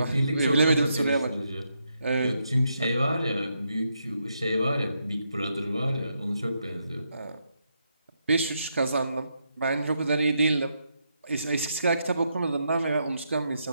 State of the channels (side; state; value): both; inverted; correlation -0.80